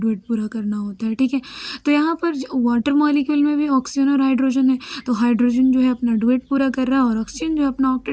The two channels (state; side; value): identical; both; correlation 1.00